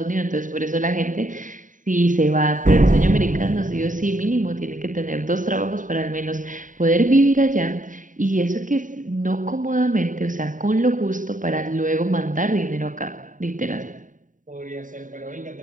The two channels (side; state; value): left; late; 0.38 ms